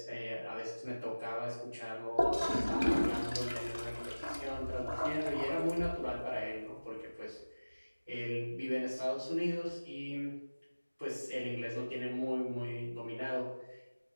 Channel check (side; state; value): both; inverted; correlation -1.00